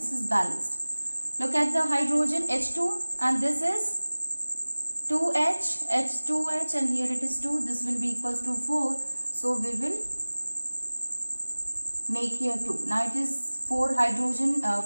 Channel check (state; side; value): inverted; both; correlation -1.00